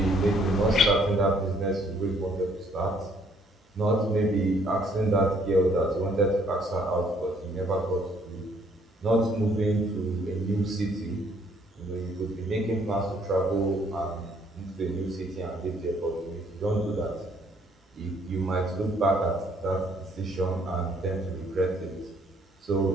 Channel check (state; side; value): normal; both; correlation 0.65